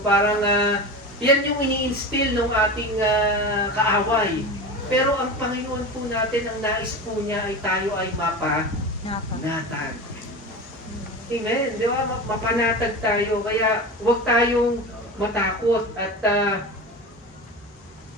parang, yan yung ini-instill ng ating kaaway. Pero ang Panginoon po natin, ang nais po niya ay tayo ay mapanatag. Amen. Di ba? Mapanatag tayo. Kaya huwag tayong matakot. At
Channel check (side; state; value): both; normal; correlation 0.28